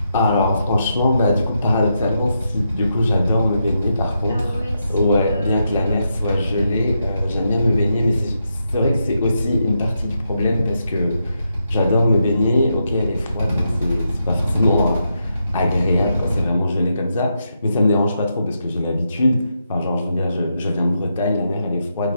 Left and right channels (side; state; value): both; inverted; correlation -0.83